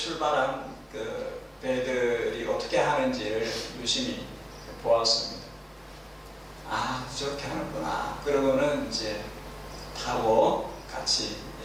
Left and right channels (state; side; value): identical; both; correlation 1.00